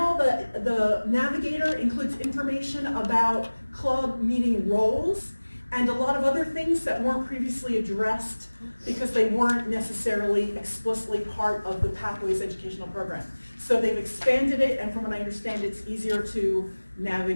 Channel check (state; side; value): inverted; both; correlation -1.00